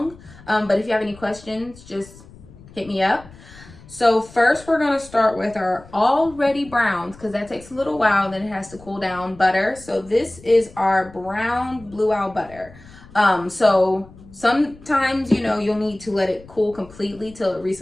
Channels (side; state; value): left; noise; rumble, 21 dB below the sound